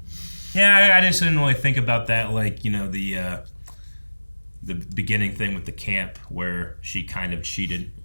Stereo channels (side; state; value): both; inverted; correlation -1.00